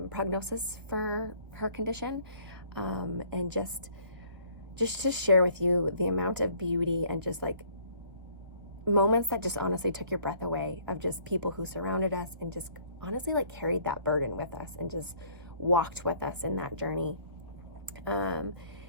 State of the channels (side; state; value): left; late; 1.7 ms